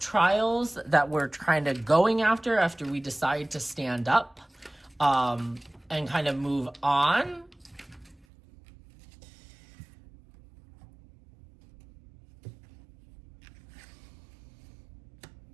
that we're kind of going after we decide to stand up and kind of move on.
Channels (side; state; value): left; drops out; at 8.2 s